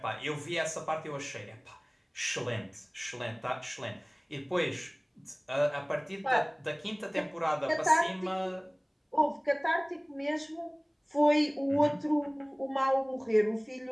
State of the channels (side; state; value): both; identical; correlation 1.00